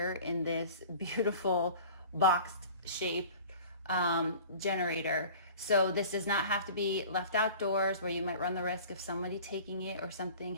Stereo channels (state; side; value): inverted; both; correlation -0.43